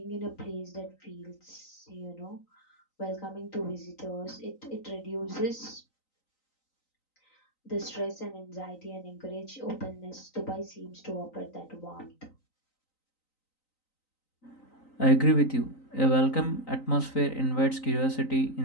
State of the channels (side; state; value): right; late; 3.9 ms